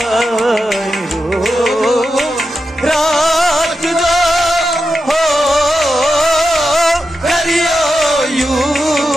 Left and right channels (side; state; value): both; normal; correlation 0.88